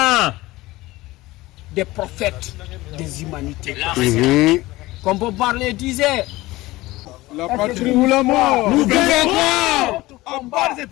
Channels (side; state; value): right; quieter; 19.0 dB